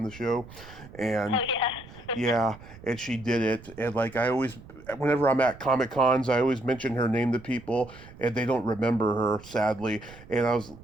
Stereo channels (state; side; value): noise; right; rumble, 19 dB below the sound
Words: the show, and Oh yeah. yeah, and she did it. And like whenever I'm at Comic Cons, I always mention her name to people, and they don't remember her, sadly. And